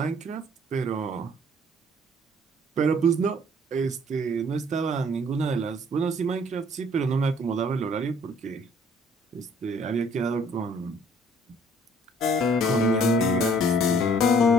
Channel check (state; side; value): normal; both; correlation 0.59